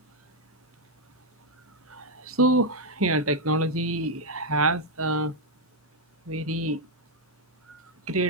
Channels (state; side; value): normal; both; correlation 0.01